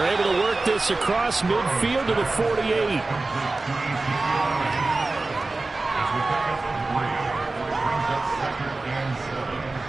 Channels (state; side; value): quieter; left; 3.3 dB